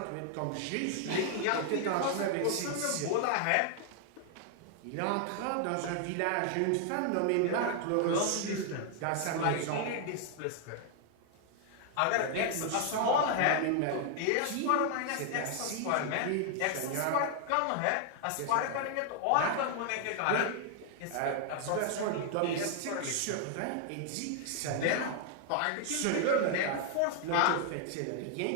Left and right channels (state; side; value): different; both; correlation 0.00